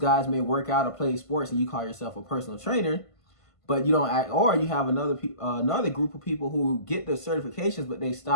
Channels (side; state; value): right; late; 1.5 ms